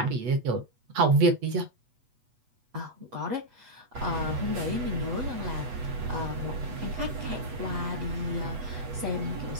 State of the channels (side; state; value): left; late; 8.1 ms